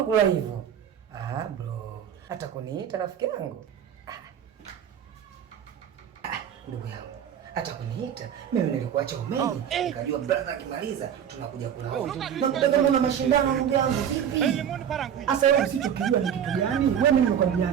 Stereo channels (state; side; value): quieter; left; 8.9 dB